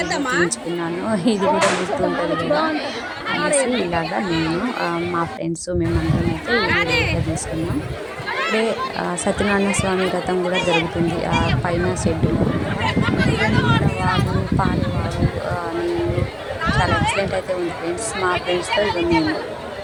తీయించుకున్నాను. ఇది కూడా గుర్తుంటుంది కదా అనేసి ఇలాగా నేను మా ఫ్రెండ్స్ మేమందరం అయితే వీడియో తీసుకున్నాం. ఇప్పుడే సత్యనారాయణ స్వామి వ్రతం కూడా జరుగుతుంది పైన షెడ్డు. వాగు, పారేవాగు, నీళ్ళు చాలా ఎక్సలెంట్ అయితే ఉంది ఫ్రెండ్స్. మా ఫ్రెండ్స్తో ఇక మేము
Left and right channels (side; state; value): both; identical; correlation 1.00